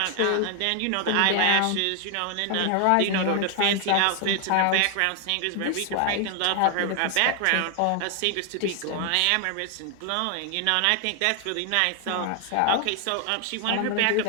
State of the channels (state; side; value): different; both; correlation 0.00